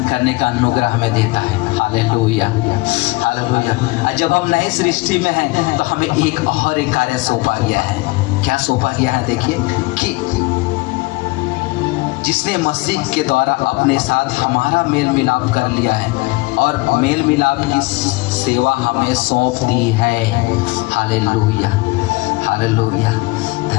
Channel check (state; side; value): quieter; right; 23.2 dB